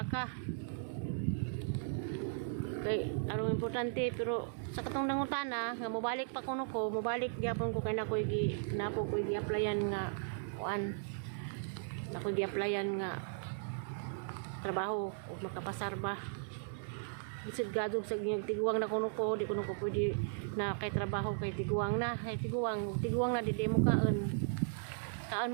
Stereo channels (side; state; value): left; silent; digital silence